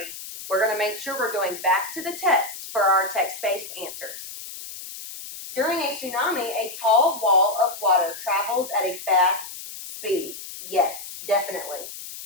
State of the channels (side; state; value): left; noise; hiss, 11 dB below the sound